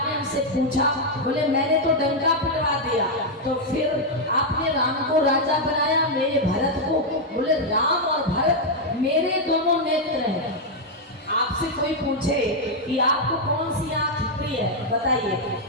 हमसे पूछा? बोले मैंने तो डंका पिटवा दिया, तो फिर आपने राम को राजा बनाया, मेरे भरत को? बोले राम और भरत मेरे दोनों नेत्र हैं। आपसे कोई पूछे कि आपको कौन सी आंख प्रिय है, बताइए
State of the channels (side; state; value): both; normal; correlation -0.01